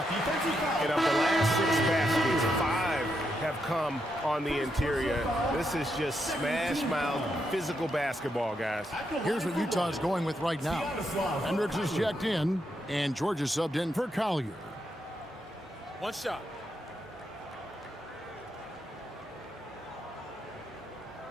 And of the last 6 baskets, 5 have come on the interior. This is just smash mouth physical basketball, guys. Here's what Utah's going with right now. Hendricks is checked in, and Georgia subbed in for Collier. One shot.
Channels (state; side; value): normal; both; correlation 0.81